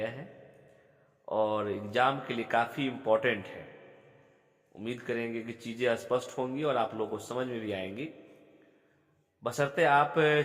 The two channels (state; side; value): identical; both; correlation 1.00